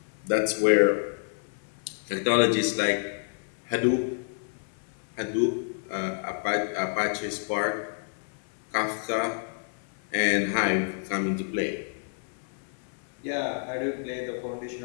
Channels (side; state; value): right; silent; 56 dB below the other